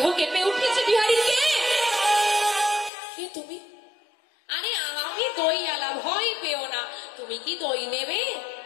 কেঁপে উঠেছে বিহারীকে। কে তুমি? আরে আমি দই আলা, ভয় পেও না। তুমি কি দই নেবে?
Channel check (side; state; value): right; drops out; at 2.9 s